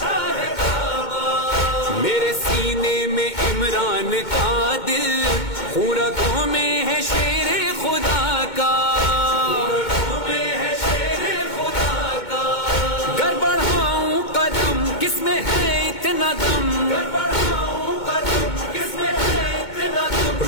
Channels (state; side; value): late; right; 2.2 ms